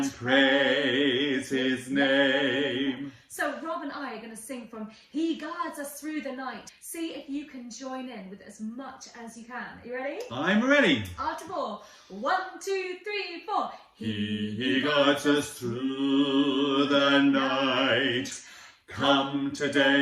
praise his name. So Rob and I are going to sing from He Guards Us Through the Night. See if you can join in with as much as you can. Are you ready? I'm ready. After 4. 1, 2, 3, 4. He guards us through the night. Come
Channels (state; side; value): identical; both; correlation 1.00